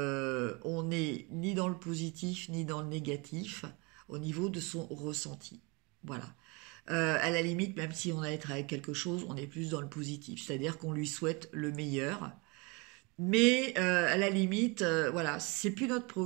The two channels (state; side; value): quieter; left; 28.7 dB